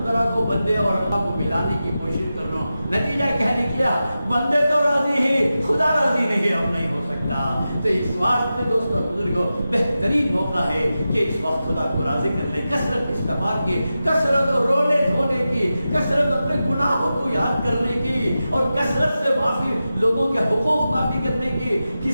کرا کو بندے اور اللہ کو ملانے کی کوشش کر رہا ہوں، نتیجہ کیا نکلا؟ بندے تو راضی ہی، خدا راضی نہیں، اب نہیں ہو سکتا۔ تو اس واسطے دوستوں بزرگوں بہترین موقع ہے کہ اس وقت خدا کو راضی کر لیں، کثرت استغفار کی، کثرت رونے دھونے کی، کثرت اپنے گناہوں کو یاد کرنے کی، اور کثرت سے معافی، لوگوں کے حقوق معافی کرنے کی،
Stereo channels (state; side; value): inverted; both; correlation -0.92